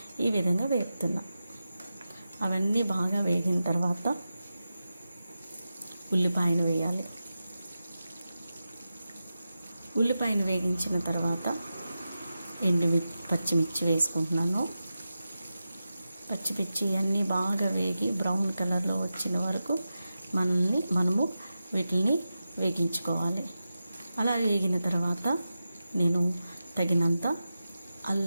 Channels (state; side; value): inverted; both; correlation -0.92